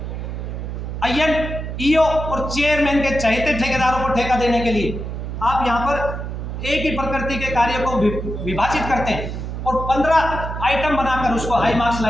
आईएन, ईओ और चेयरमैन के चहेते ठेकेदारों को ठेका देने के लिए आप यहाँ पर एक ही प्रकृति के कार्य को विभाजित करते हैं और 15 आइटम बनाकर उसको हाई मार्क्स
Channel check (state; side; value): noise; right; hum, 6 dB below the sound